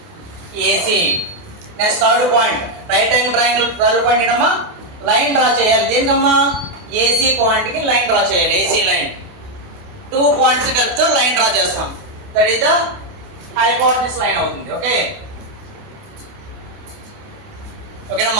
AC. Next third point right angle triangle third point ఏంటమ్మా లైన్ డ్రా చేయాలి. దేనికమ్మా ఏసీ పాయింట్కి లైన్ డ్రా చేయాలి. ఏసీ లైన్ 2 పాయింట్స్ కలిపితో లైన్ డ్రా చేస్తాం. That is the hypotenuse line అవుతుంది. Okay,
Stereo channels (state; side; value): late; left; 28 ms